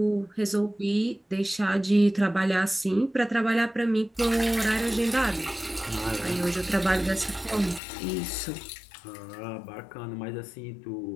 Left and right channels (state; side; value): drops out; right; at 7.8 s